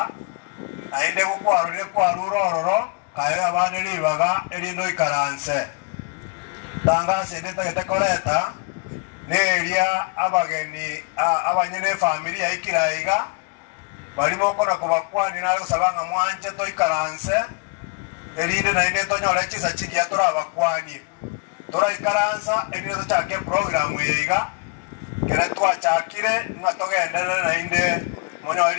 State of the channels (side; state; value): right; quieter; 31.6 dB